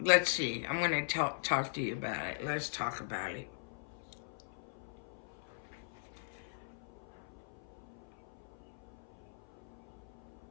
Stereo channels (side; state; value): right; silent; 51 dB below the other